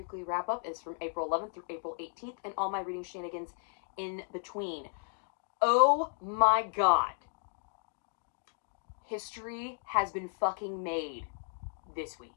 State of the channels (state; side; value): silent; right; 55 dB below the other